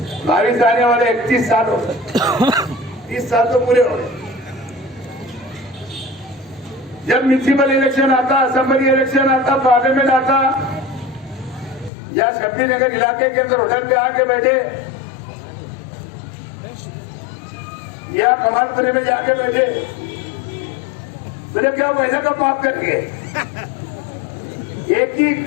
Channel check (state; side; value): drops out; right; at 11.9 s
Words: 22 आने वाले 31 साल हो गए, 30 साल तो पूरे हो गए। जब म्यूनिसिपल इलेक्शन आता, असेंबली इलेक्शन आता, पार्लियामेंट आता, या शब्बी नगर इलाके के अंदर होटल पे आके बैठे या कमालपुरे में जाके बैठे, बोले क्या पैसा का माफ करके एक ही